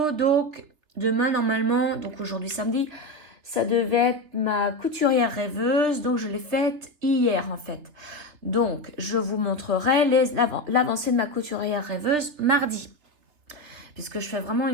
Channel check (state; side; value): late; left; 3.1 ms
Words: Donc, demain, normalement, donc aujourd'hui, samedi, ça devait être ma couturière rêveuse. Donc, je l'ai faite hier, en fait. Donc, je vous montrerai l'avancée de ma couturière rêveuse mardi, puisque je fais vraiment